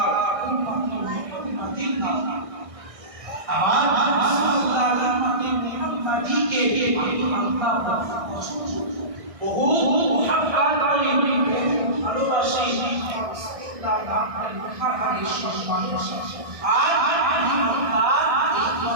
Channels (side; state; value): left; late; 1.6 ms